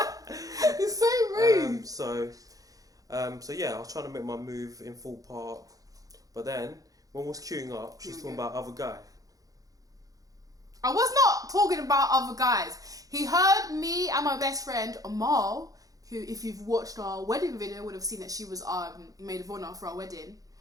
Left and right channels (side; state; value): left; late; 0.17 ms